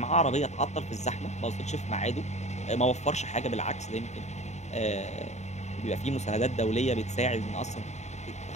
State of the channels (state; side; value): late; right; 0.33 ms